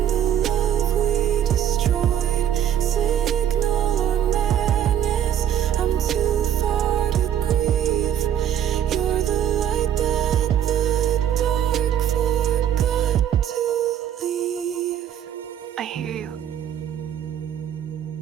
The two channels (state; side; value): quieter; left; 10.2 dB